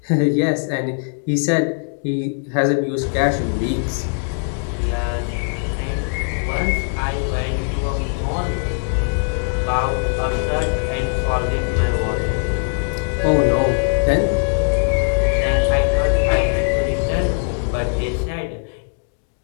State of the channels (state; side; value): silent; right; 59 dB below the other